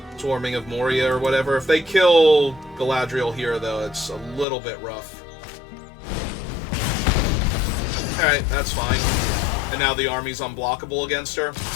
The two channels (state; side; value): drops out; right; at 4.5 s